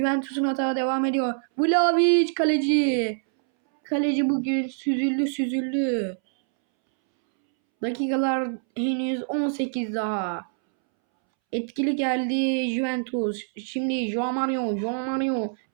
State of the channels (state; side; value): silent; left; 62 dB below the other